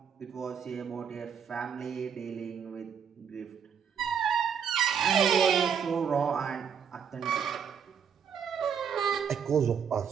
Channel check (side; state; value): left; quieter; 7.4 dB